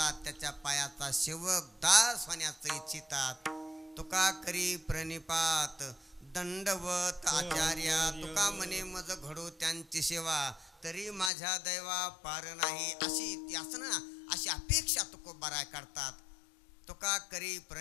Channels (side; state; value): right; drops out; at 11.3 s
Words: त्याच्या पायाचा सेवक दास होण्याचं इच्छितात. तुका करी प्रणिपात दंडवत आचार्या. तुका म्हणे मज घडो त्यांची सेवा, तरी माझ्या दैवा पार नाही. अशी यासना, अशी अपेक्षा तुकोबाराय करतात. तुका करी